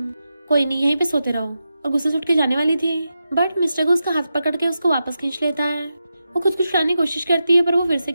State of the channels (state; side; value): inverted; both; correlation -0.89